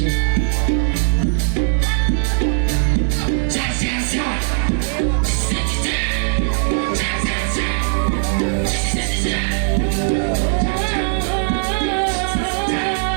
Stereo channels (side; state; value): left; silent; 67 dB below the other